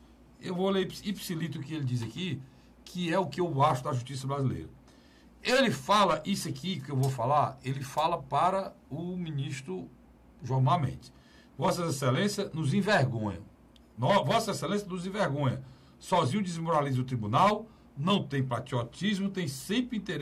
eu vou ler ipsilito o que ele diz aqui, que é o que eu acho da justiça brasileira. Ele fala isso aqui que eu vou falar, ele fala para o ministro Gilmar Mendes. Vossas Excelências nos envergonham. Vossa Excelência nos envergonha. Sozinho desmoraliza o tribunal, não tem patriotismo, tem sempre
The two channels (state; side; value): identical; both; correlation 1.00